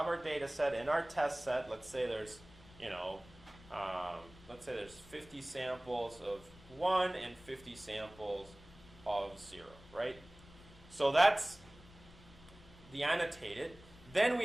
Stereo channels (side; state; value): left; noise; rumble, 22 dB below the sound